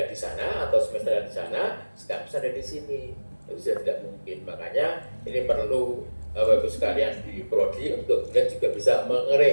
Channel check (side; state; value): both; inverted; correlation -1.00